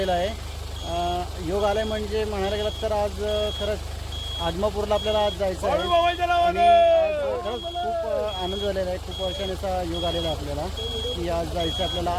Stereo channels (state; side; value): identical; both; correlation 1.00